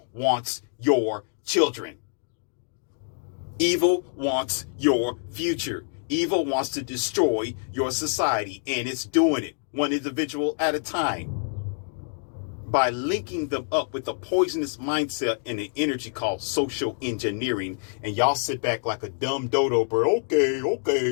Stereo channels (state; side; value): silent; right; digital silence